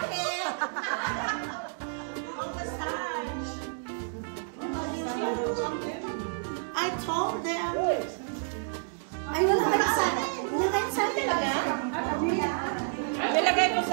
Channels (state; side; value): silent; left; 58 dB below the other